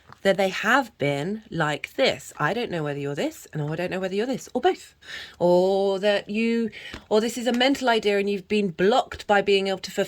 that they have been like this. I don't know whether you're this, and I don't know whether you're this, or both. Or that you, or this is a mental idea and you've been blocked by being able to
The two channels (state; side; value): identical; both; correlation 1.00